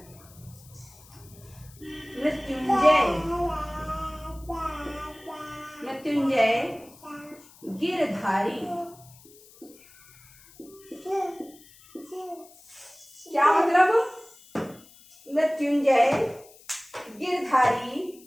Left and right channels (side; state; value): left; noise; hiss, 24 dB below the sound